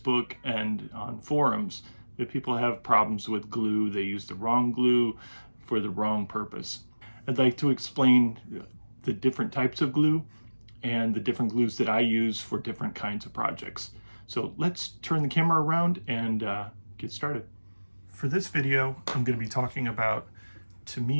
and on forums that people have problems with glue. They use the wrong glue for the wrong purpose. I'd like to explain the different types of glue and the different glues that I use for different kinds of projects. So let's turn the camera around and get started. For this video, I'm going to be talking about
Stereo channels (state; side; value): inverted; both; correlation -1.00